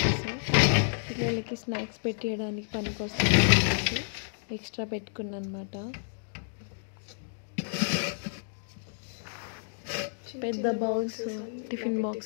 పిల్లలకి స్నాక్స్ పెట్టేయడానికి పనికొస్తుంది. ఎక్స్ట్రా పెట్టుకున్నాను అనమాట. పెద్ద bowls, tiffin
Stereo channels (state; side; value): silent; right; digital silence